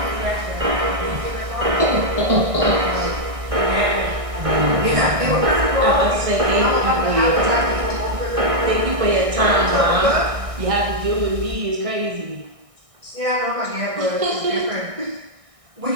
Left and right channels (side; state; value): left; late; 1.6 ms